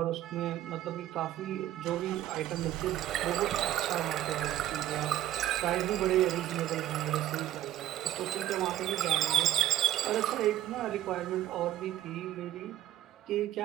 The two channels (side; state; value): left; quieter; 13.0 dB